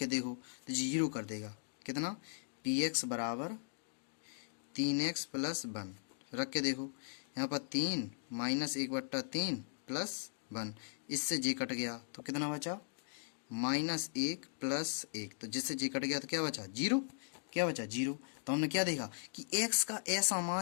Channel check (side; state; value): right; silent; digital silence